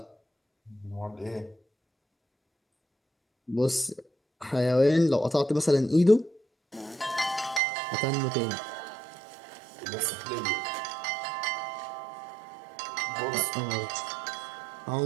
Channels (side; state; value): left; drops out; at 7.6 s